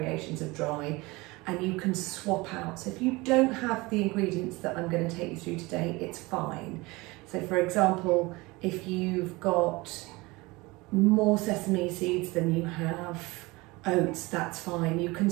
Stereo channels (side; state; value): left; quieter; 23.1 dB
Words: of dry, and you can swap out. So if you don't have the ingredients that I'm going to take you through today, it's fine. So for example, if you've got more sesame seeds than you have oats, that's fine. You can